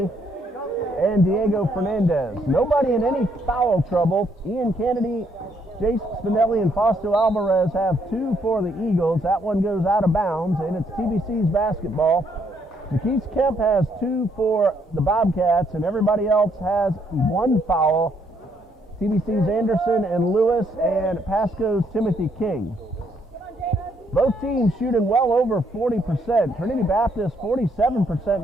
and Diego Fernandez. Nobody in any foul trouble. Ian Kennedy, Jace Spinelli, and Fausto Alvarez have 2 for the Eagles. That one goes out of bounds, and it's TBC's basketball. Jakesi Kemp has 2 for the Bobcats, and everybody else has 1 foul. TBC's Anderson and Lewis, and Pasco's Timothy King. Both teams shooting well over 40%. Trinity Baptist 47%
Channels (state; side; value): normal; both; correlation 0.71